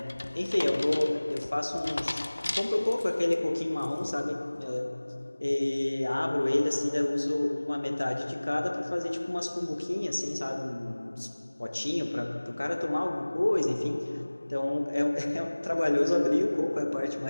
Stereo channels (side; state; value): both; inverted; correlation -1.00